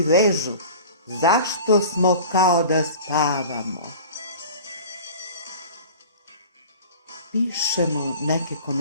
vežu? Zašto smo kao da spavamo? Pišemo neke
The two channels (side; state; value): both; inverted; correlation -0.40